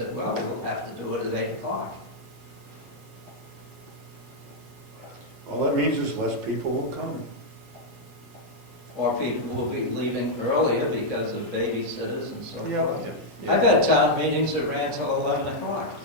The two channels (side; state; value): both; normal; correlation -0.03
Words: well, we'll have to do it at 8 o'clock. all that means is less people will come. Or people will be leaving earlier because of babysitters and so Yeah. forth. I've had town meetings that ran till 11 o'clock.